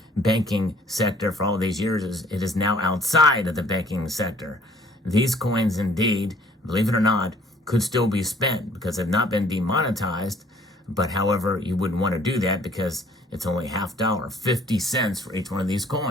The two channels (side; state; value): both; normal; correlation 0.58